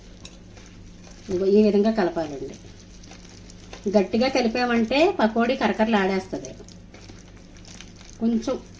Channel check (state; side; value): identical; both; correlation 1.00